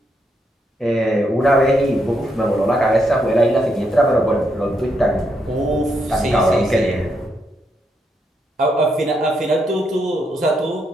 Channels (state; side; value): normal; both; correlation 0.79